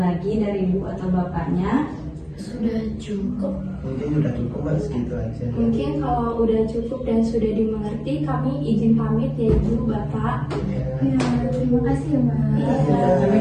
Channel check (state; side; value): identical; both; correlation 1.00